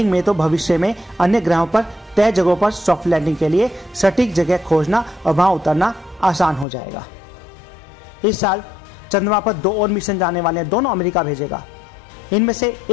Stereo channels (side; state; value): right; drops out; at 6.7 s